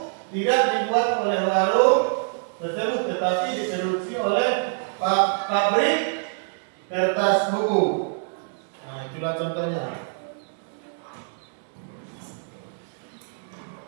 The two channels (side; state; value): left; silent; digital silence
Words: tidak dibuat oleh warung, tersebut, tetapi diproduksi oleh pabrik kertas buku. Nah, itulah contohnya.